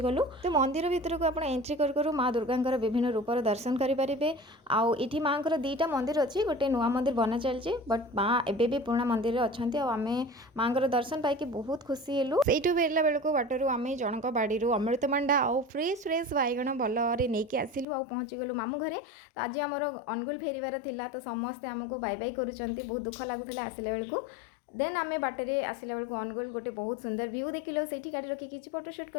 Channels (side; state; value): right; drops out; at 17.9 s